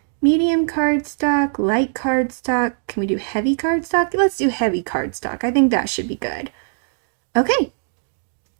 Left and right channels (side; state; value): left; silent; digital silence